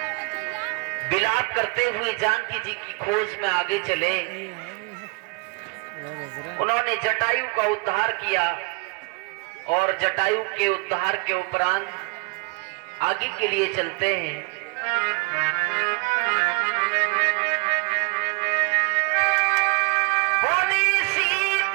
विलाप करते हुए जानकी जी की खोज में आगे चले। उन्होंने जटायु का उद्धार किया और जटायु के उद्धार के उपरांत आगे के लिए चलते हैं। बोली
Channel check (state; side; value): quieter; left; 30.0 dB